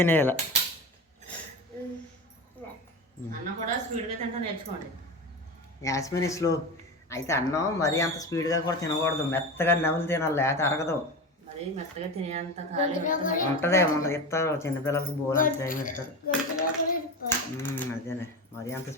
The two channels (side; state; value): both; normal; correlation 0.25